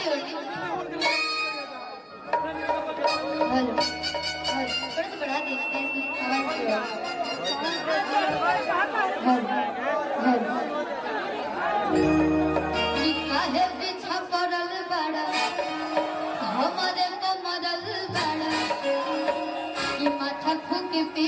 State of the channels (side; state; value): both; identical; correlation 1.00